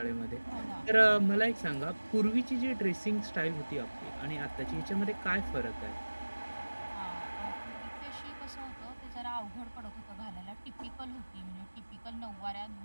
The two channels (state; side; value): inverted; both; correlation -1.00